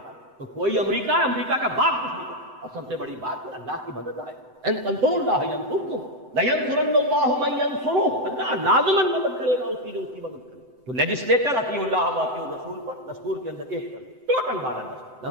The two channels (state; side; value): late; left; 7.9 ms